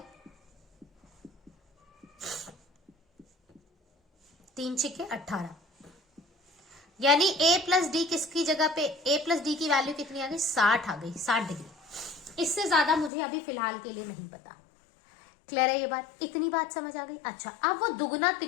3 छिके 18, यानी A प्लस डी किसकी जगह पे A प्लस डी की वैल्यू कितनी आ गई 60 आ गई, 60 डिग्री। इससे ज्यादा मुझे अभी फिलहाल के लिए नहीं पता, क्लियर है ये बात। इतनी बात समझ आ गई। अच्छा अब वो दुगना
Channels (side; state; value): right; drops out; at 13.1 s